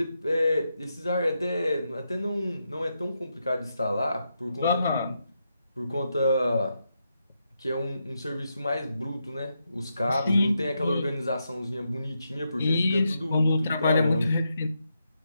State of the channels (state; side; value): inverted; both; correlation -0.84